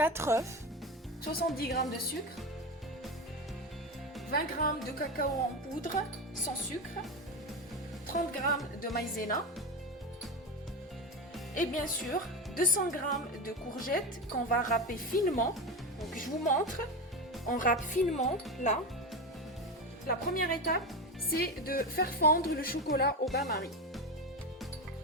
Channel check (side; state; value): both; normal; correlation 0.19